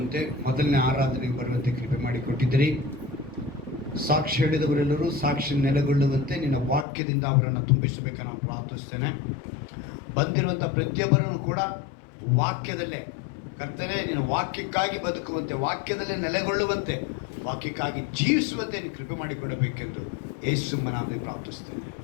ಮೊದಲನೇ ಆರಾಧನೆಗೆ ಬರುವಂತೆ ಕೃಪೆ ಮಾಡಿಕೊಟ್ಟಿದ್ದೀರಿ. ಸಾಕ್ಷಿ ಹೇಳಿದವರೆಲ್ಲರೂ ಸಾಕ್ಷಿ ನೆಲೆಗೊಳ್ಳುವಂತೆ ನಿನ್ನ ವಾಕ್ಯದಿಂದ ಅವರನ್ನು ತುಂಬಿಸಬೇಕನ್ನು ನಾನು ಪ್ರಾರ್ಥಿಸ್ತೇನೆ. ಬಂದಿರುವಂಥ ಪ್ರತಿಯೊಬ್ಬರನ್ನು ಕೂಡ ವಾಕ್ಯದಲ್ಲೇ ಕರ್ತನೆ ನಿನ್ನ ವಾಕ್ಯಕ್ಕಾಗಿ ಬದುಕುವಂತೆ, ವಾಕ್ಯದಲ್ಲೇ ನೆಲೆಗೊಳ್ಳುವಂತೆ, ವಾಕ್ಯಕ್ಕಾಗಿ ಜೀವಿಸುವಂತೆ ನೀನು ಕೃಪೆ ಮಾಡಿಕೊಡಬೇಕೆಂದು ಯೇಸುವಿನ ನಾಮದಲ್ಲಿ ಪ್ರಾರ್ಥಿಸ್ತೇನೆ.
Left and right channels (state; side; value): drops out; right; at 6.9 s